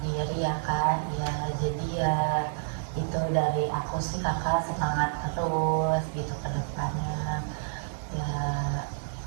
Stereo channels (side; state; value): left; silent; digital silence